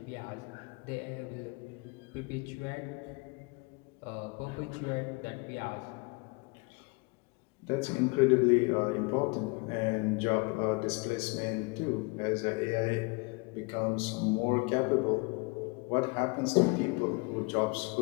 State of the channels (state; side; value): quieter; right; 29.0 dB